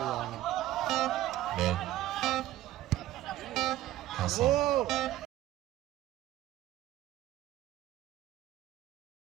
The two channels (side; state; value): left; quieter; 14.5 dB